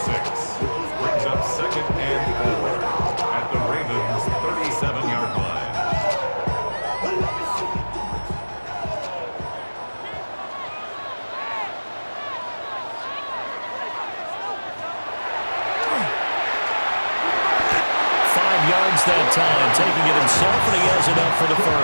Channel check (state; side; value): inverted; both; correlation -1.00